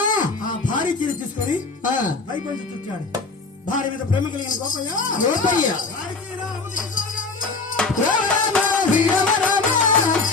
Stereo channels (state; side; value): quieter; right; 4.0 dB